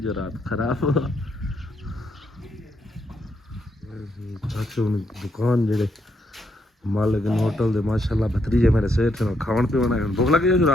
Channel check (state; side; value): normal; both; correlation 0.77